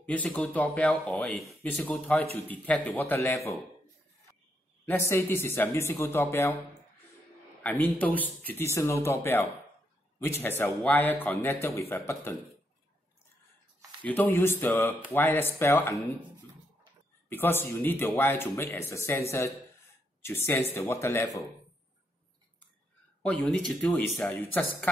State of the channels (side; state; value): both; normal; correlation 0.78